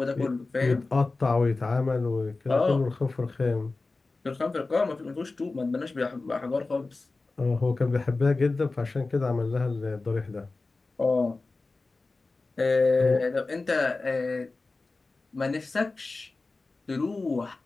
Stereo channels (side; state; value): right; quieter; 3.5 dB